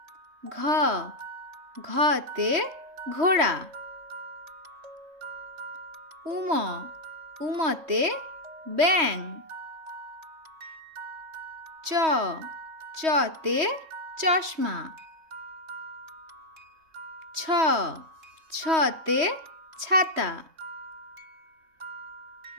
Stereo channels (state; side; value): late; left; 3.1 ms